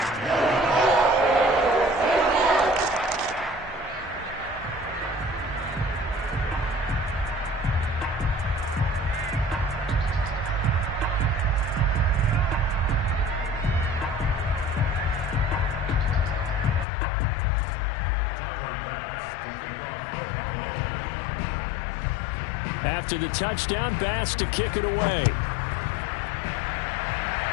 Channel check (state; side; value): drops out; right; at 16.9 s